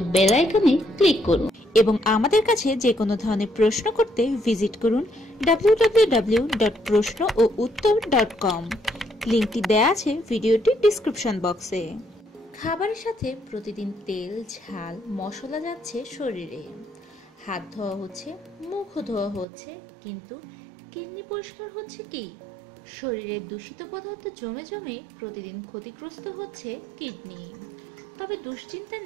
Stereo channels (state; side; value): drops out; left; at 19.5 s